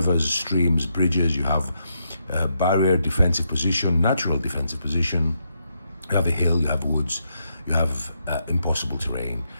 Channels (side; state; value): both; inverted; correlation -0.81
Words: streams, bridges, you have barrier, defensive position, natural defensive position, you have a hill, you have woods, you have impossible terrain,